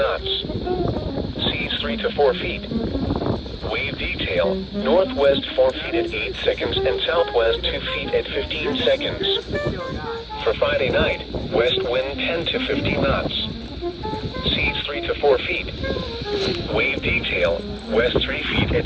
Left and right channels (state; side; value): identical; both; correlation 1.00